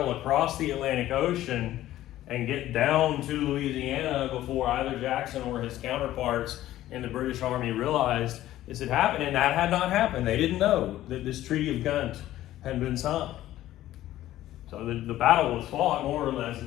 across the Atlantic Ocean and get down to Louisiana before either Jackson or his counterparts in the British Army realized this had happened, and that had not happened. They didn't know that this Treaty of Ghent had been signed. So the battle was fought more or less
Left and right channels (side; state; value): right; quieter; 14.1 dB